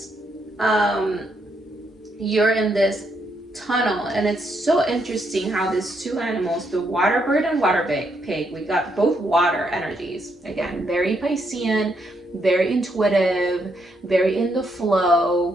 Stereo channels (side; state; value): both; normal; correlation 0.76